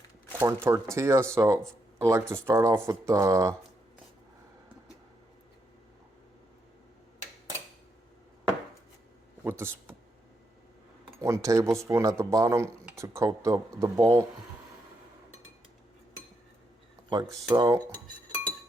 corn tortilla. So I like to start off with the 1 tablespoon at the bottom to coat the bowl, like so.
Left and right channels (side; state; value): both; normal; correlation 0.80